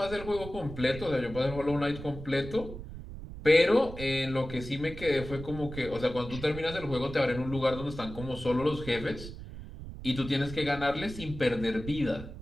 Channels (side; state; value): right; noise; rumble, 11 dB below the sound